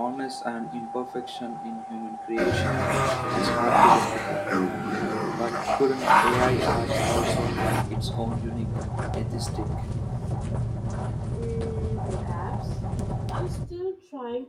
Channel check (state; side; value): identical; both; correlation 1.00